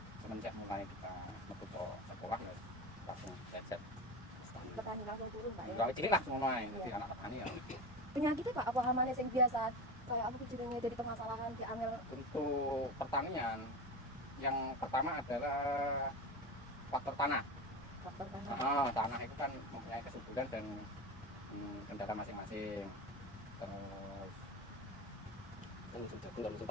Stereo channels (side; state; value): both; normal; correlation 0.25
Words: semenjak mulai kita masuk ke sekolah ya langsung belajar Petani langsung turun, Pak, ya? dari cilik lah semua main, jadi anak petani ya. Penyakitnya, Pak, apa hamanya yang biasa? Kayak aku jenenge dari permasalahan di angel. Untuk pertanian yang pertama adalah faktor tanah. Faktor tanah. Tanah itu kan mempunyai kesuburan dan kendala masing-masing. Terus Kan musim jagung dan musim